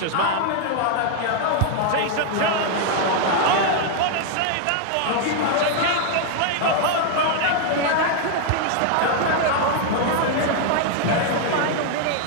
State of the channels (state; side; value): different; both; correlation 0.00